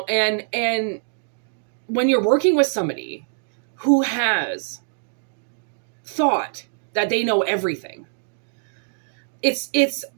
when you're working with somebody who has thought that they know everything, it's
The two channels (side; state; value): left; silent; digital silence